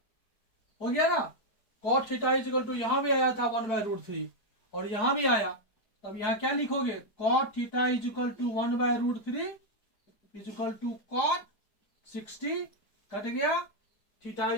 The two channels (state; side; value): late; right; 4.7 ms